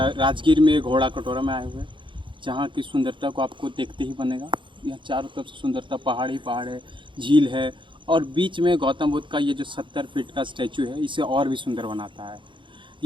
में घोड़ा कटोरा में आए हुए हैं, जहाँ की सुंदरता को आपको देखते ही बनेगा। यह चारों तरफ से सुंदरता, पहाड़ ही पहाड़ है, झील है और बीच में गौतम बुद्ध का ये जो 70 फीट का स्टैचू है, इसे और भी सुंदर बनाता है।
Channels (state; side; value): late; left; 0.24 ms